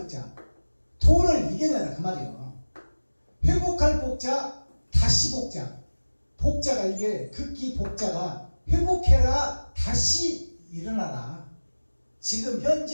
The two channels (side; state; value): both; inverted; correlation -1.00